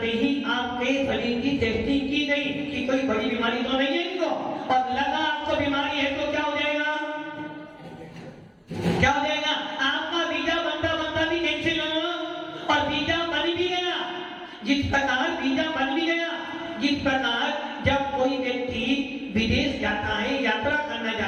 ही आपके शरीर की टेस्टिंग की गई कि कोई बड़ी बीमारी तो नहीं है इनको, और लगा आपको बीमारी है तो क्या हो जाएगा? क्या हो जाएगा? आपका वीजा बनता बनता भी कैंसिल हो और वीजा बन भी गया। जिस प्रकार वीजा बन भी गया, जिस प्रकार जब कोई व्यक्ति विदेश जाता है, यात्रा करना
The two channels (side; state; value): both; identical; correlation 1.00